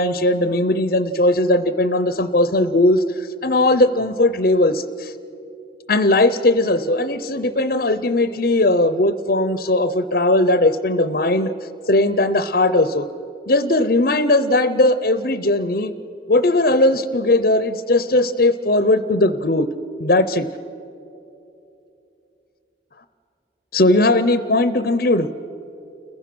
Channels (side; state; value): both; normal; correlation 0.14